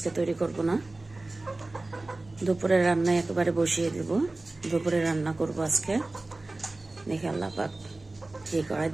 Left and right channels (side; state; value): left; quieter; 3.0 dB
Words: তৈরি করব না। দুপুরের রান্নায় একেবারে বসিয়ে দেব। দুপুরে রান্না করব আজকে, দেখে আল্লাহ পাক কি করে।